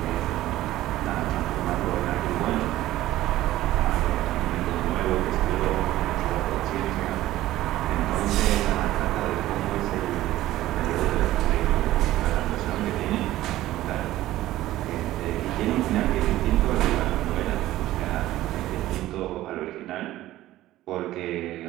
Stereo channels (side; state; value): left; quieter; 15.2 dB